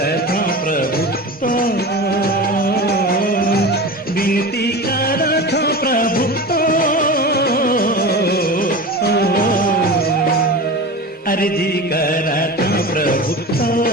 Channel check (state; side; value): normal; both; correlation 0.30